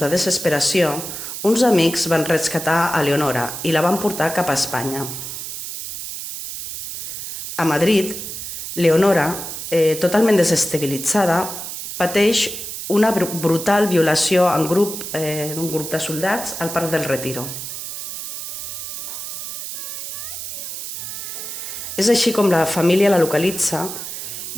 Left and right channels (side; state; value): right; noise; hiss, 7 dB below the sound